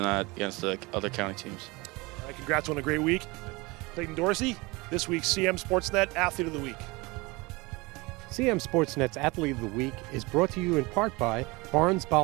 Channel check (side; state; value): left; quieter; 24.4 dB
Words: that against the other county teams. All right, congrats on a great week. Clayton Dorsey, this week's CMSportsNet Athlete of the Week. CMSportsNet's Athlete of the Week is brought to you in part by